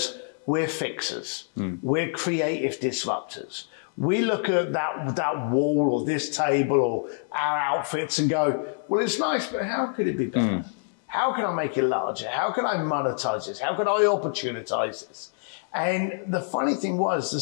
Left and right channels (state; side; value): silent; right; digital silence